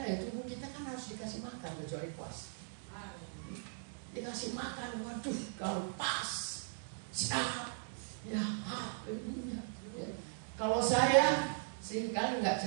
ya, tubuh kita kan harus dikasih makan kecuali puas. Dikasih makan, waduh, kalau pas, sehat, ya, ya. Kalau saya seringkali nggak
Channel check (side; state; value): left; silent; digital silence